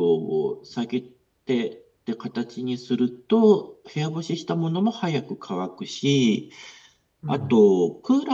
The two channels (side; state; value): both; identical; correlation 1.00